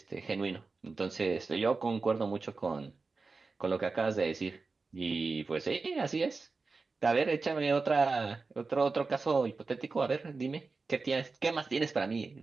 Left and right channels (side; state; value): left; quieter; 4.1 dB